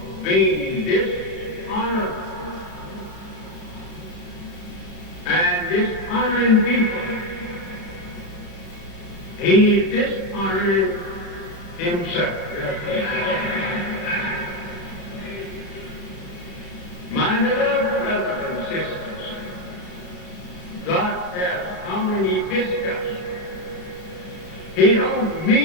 being dishonored and dishonoring people, he is dishonoring himself. My beloved brothers and sisters, God has come and he visited us. He don't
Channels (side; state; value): right; late; 35 ms